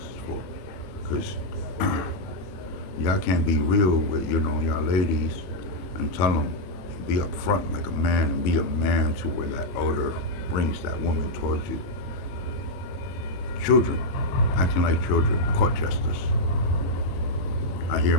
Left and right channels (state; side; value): late; right; 22 ms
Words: for? Because y'all can't be real with, y'all ladies and tell them, be upfront like a man and be a man to where that odor brings that woman towards you. Children, acting like children, court jesters. I hear